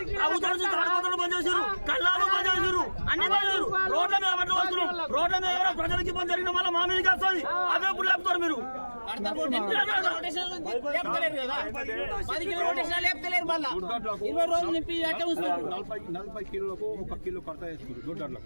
తాడిపోతలు బంద్ చేశారు కళ్ళాలు బంద్ చేశారు అన్ని బంద్ చేశారు రోడ్ల మీద పట్టు వస్తున్నాం రోడ్ల మీద ఎవరో ప్రజలకి ఇబ్బంది జరిగిన వల్ల మా మీదకి వస్తుంది అవే ఇప్పుడు లేపుతారు మీరు 10 రోజులు నింపి 40 కిలోలకు 1 కిలో కడత వేసుకుంటారు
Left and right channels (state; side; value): inverted; both; correlation -1.00